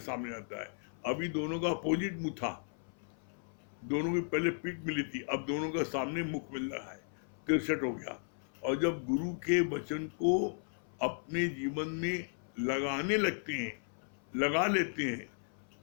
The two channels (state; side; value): silent; right; 54 dB below the other